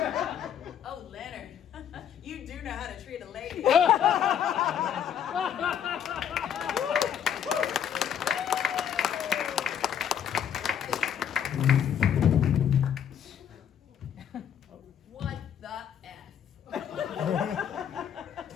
Oh, Leonard, you do know how to treat a lady. What the F?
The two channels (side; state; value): right; quieter; 8.9 dB